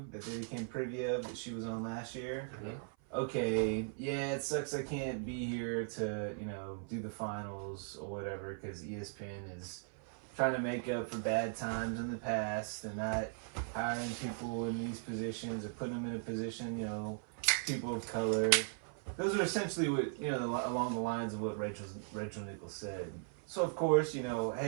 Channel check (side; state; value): left; silent; 52 dB below the other